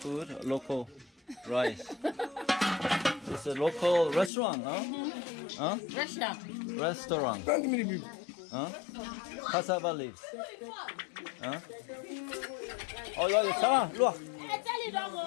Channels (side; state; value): right; drops out; at 4.3 s